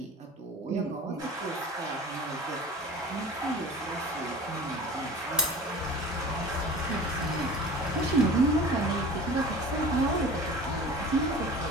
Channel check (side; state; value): both; normal; correlation 0.38